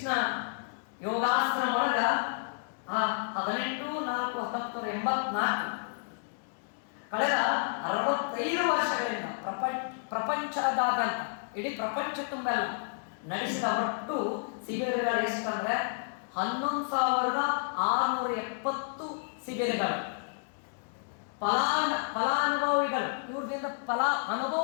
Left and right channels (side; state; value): right; silent; digital silence